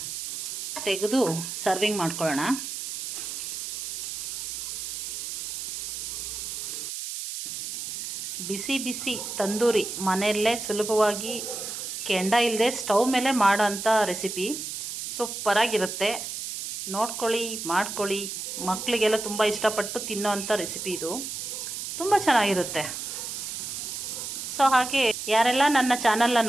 ತೆಗೆದು ಸರ್ವಿಂಗ್ ಮಾಡ್ಕೊಳ್ಳೋಣ. ಬಿಸಿ ಬಿಸಿ ತಂದೂರಿ ಮನೆಯಲ್ಲೇ ಸುಲಭವಾಗಿ ಕೆಂಡ ಇಲ್ಲದೆ ಸ್ಟವ್ ಮೇಲೆ ಮಾಡೋಂಥ ರೆಸಿಪಿ. ಸೂಪರಾಗಿರುತ್ತೆ. ನೋಡ್ಕೊಳ್ಳಿ, ಮಾಡ್ಕೊಳ್ಳಿ. ಮಕ್ಕಳಿಗೆಲ್ಲ ತುಂಬ ಇಷ್ಟಪಟ್ಟು ತಿನ್ನೋ ಅಂಥ ರೆಸಿಪಿ ಇದು. ತುಂಬ ಚೆನ್ನಾಗಿರುತ್ತೆ. ಸೊ ಹಾಗೆ ಯಾರೆಲ್ಲ ನನ್ನ ಚಾನಲ್ನ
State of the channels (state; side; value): noise; right; hiss, 6 dB below the sound